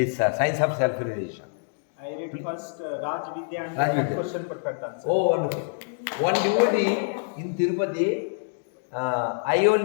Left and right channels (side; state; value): right; silent; digital silence